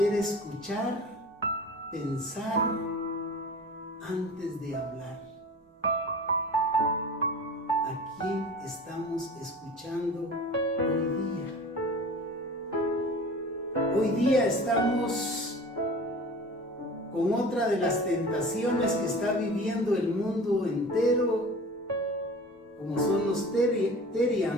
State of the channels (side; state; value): both; normal; correlation 0.39